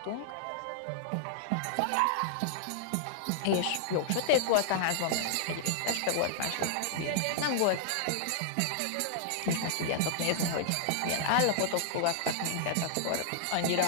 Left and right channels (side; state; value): both; different; correlation -0.01